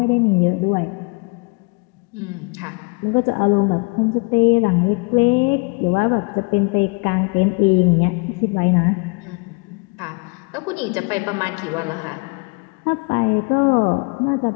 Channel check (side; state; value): right; quieter; 32.1 dB